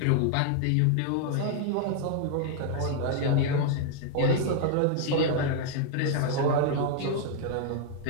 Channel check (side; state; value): both; different; correlation 0.00